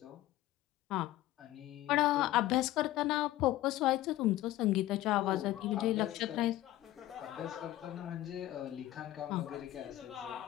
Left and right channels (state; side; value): quieter; right; 15.3 dB